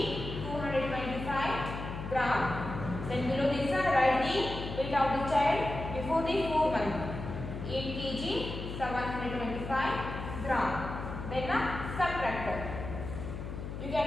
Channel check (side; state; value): left; noise; hum, 7 dB below the sound